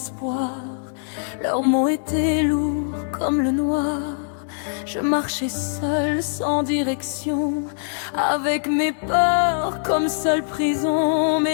Leurs mots étaient lourds comme le noir. Je marchais seule, sans direction, avec mes peurs comme seule prison.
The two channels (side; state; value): right; silent; digital silence